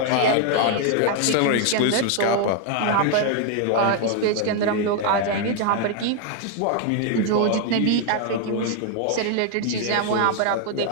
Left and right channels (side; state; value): both; different; correlation 0.00